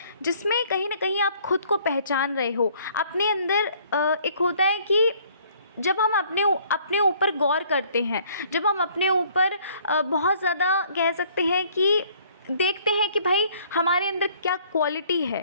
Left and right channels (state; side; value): inverted; both; correlation -0.60